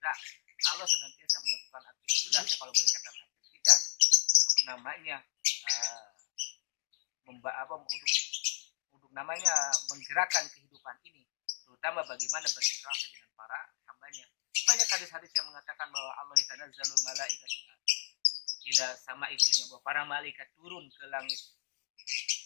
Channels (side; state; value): right; silent; digital silence